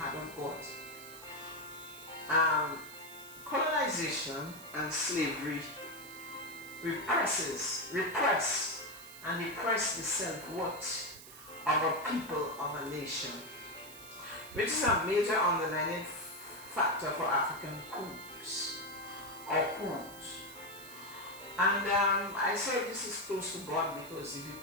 of God. Colonization and slavery repress and depress the self-worth of a people, of a nation, which is a major underlying factor for African coups. And I say this is close to God because, if you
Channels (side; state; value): right; noise; hiss, 16 dB below the sound